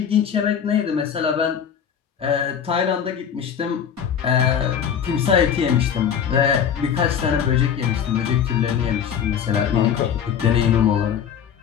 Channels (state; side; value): quieter; right; 8.1 dB